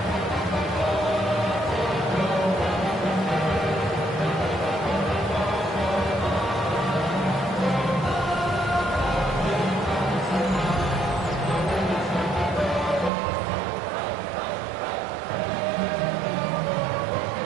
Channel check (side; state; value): left; drops out; at 13.1 s